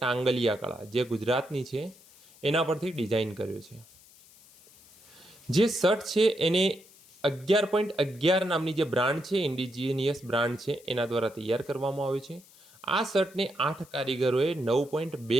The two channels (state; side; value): noise; left; hiss, 25 dB below the sound